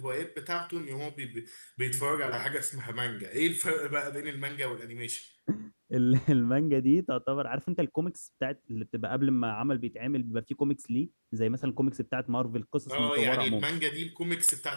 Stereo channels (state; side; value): inverted; both; correlation -1.00